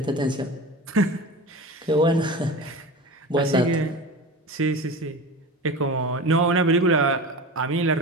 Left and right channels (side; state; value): both; normal; correlation 0.31